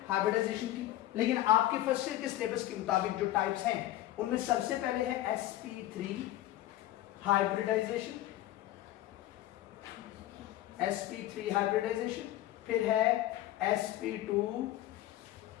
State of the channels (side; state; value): right; quieter; 14.4 dB